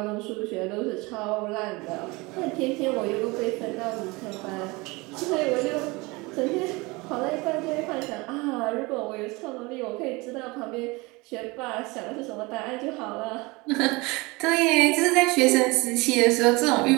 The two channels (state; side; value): quieter; left; 24.5 dB